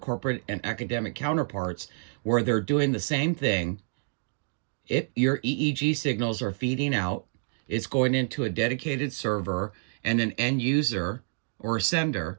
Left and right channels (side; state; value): left; silent; digital silence